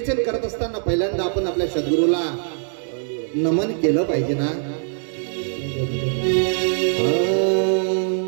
करत असताना पहिल्यांदा आपण आपल्या सद्गुरूला नमन केलं पाहिजे ना.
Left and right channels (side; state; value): left; silent; digital silence